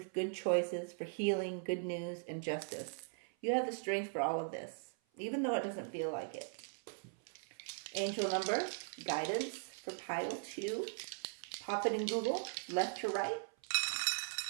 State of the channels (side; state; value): left; silent; 51 dB below the other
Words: good choices, for healing, good news, and justice. You have the strength for all of this, even though it doesn't feel like it. Angel number, guidance for pile 2. Pop it in Google, left to right.